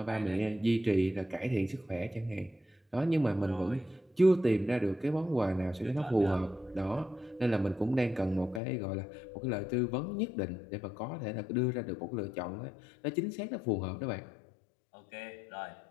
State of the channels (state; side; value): drops out; right; at 8.6 s